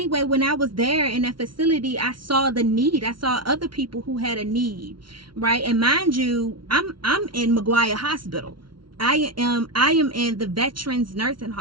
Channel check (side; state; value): left; late; 0.73 ms